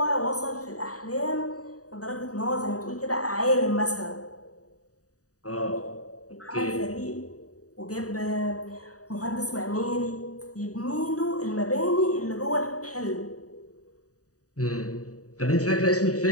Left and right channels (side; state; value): right; late; 0.66 ms